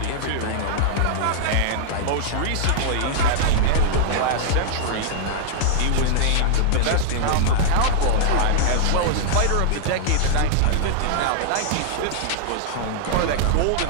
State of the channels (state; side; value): different; both; correlation -0.01